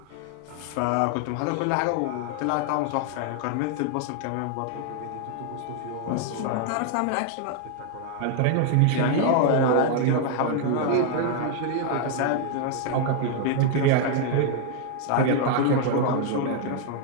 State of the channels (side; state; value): both; different; correlation 0.00